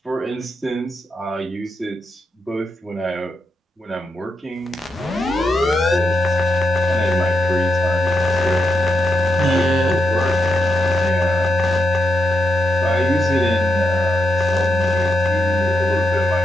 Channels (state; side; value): normal; both; correlation 0.82